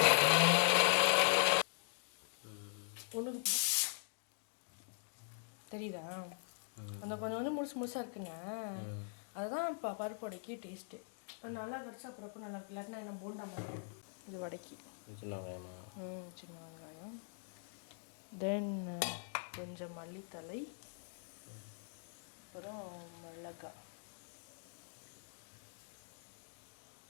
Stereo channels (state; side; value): silent; right; digital silence